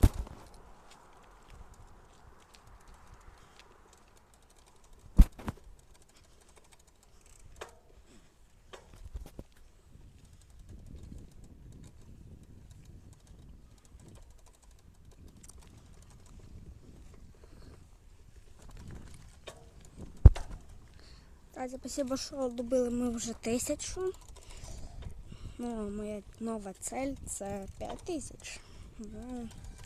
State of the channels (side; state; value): both; identical; correlation 1.00